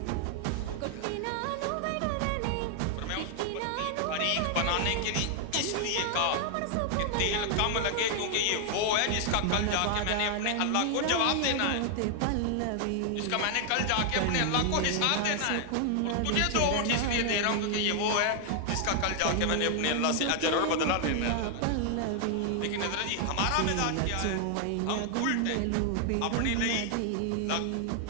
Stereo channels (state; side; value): different; both; correlation 0.00